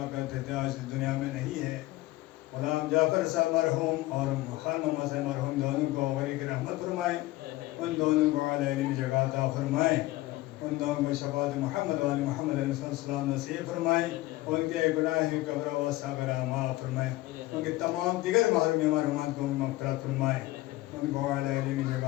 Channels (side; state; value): right; quieter; 18.2 dB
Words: کرتے تھے, آج اس دنیا میں نہیں ہے. غلام جعفر صاحب مرحوم اور خان محمد صاحب مرحوم دونوں کو غریق رحمت فرمائیں. ان دونوں کو اعلی علمی جگہ عطا فرمائیں. ان دونوں کو شفاعت محمد والی محمد علیہ السلام نصیب فرمائیں. ان کے گناہ قبر و صغرا معاف فرمائیں. ان کے تمام دیگر محروم مرحومات کو مغفرت فرمائیں. ان کو اعلی علمی جگہ